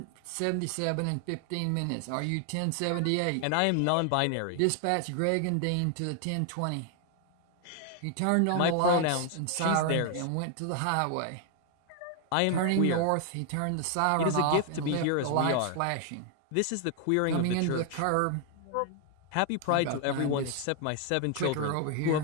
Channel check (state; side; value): different; both; correlation 0.00